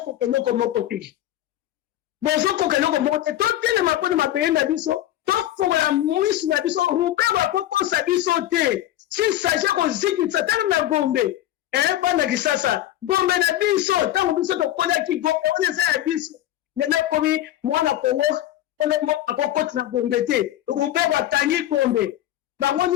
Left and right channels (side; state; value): right; quieter; 13.6 dB